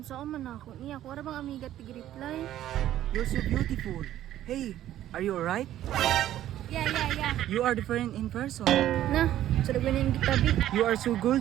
sa man ako niya. Kung bang amiga tig-reply. You're so beautiful. Hey, are you alright? Yeah. You are different in person. Na, sarap ba na yung gitabi? You are so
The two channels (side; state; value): left; quieter; 12.7 dB